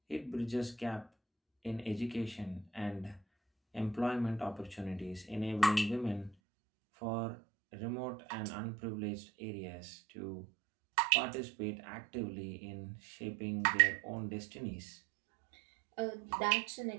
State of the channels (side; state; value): left; drops out; at 6.4 s